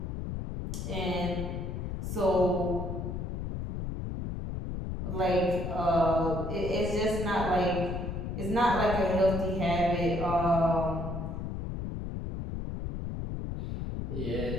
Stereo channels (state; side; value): noise; left; rumble, 4 dB below the sound